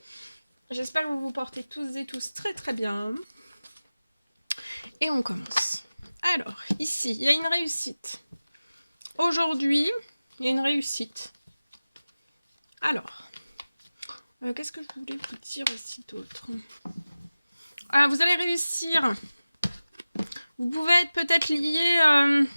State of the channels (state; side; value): inverted; both; correlation -0.97